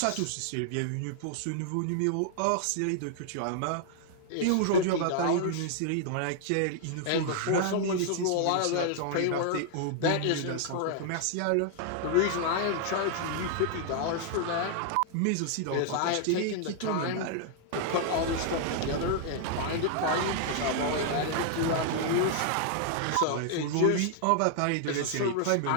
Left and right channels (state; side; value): different; both; correlation -0.01